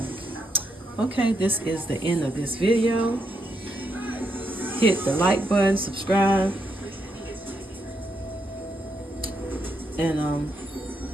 Okay, this is the end of this video. Hit the like button, subscribe, and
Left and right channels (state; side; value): normal; both; correlation 0.79